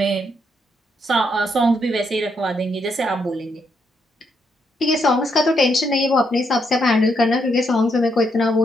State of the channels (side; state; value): both; normal; correlation 0.77